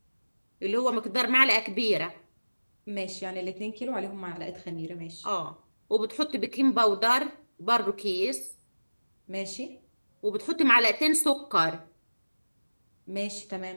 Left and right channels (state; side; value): inverted; both; correlation -1.00